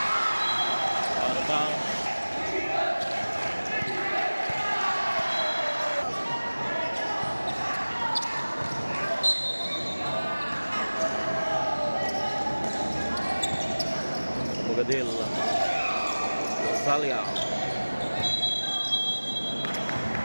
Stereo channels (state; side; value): inverted; both; correlation -1.00